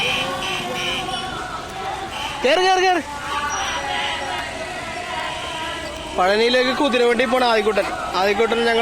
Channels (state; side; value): identical; both; correlation 1.00